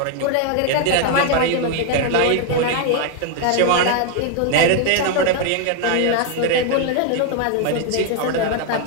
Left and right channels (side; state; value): both; different; correlation 0.01